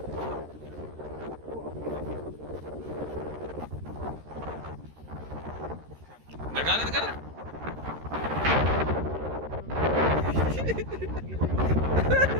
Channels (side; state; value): left; late; 13 ms